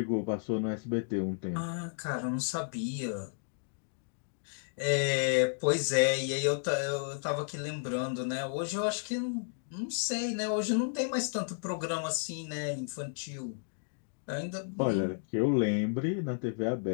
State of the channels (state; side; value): silent; right; digital silence